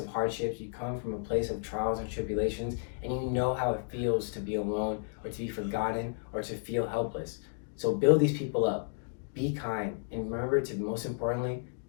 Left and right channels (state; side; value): silent; right; digital silence